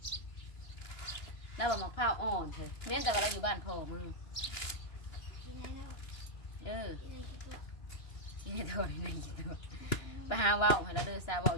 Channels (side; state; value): right; late; 2.9 ms